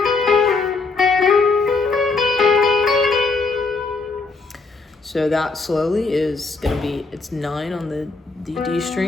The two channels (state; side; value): quieter; right; 4.0 dB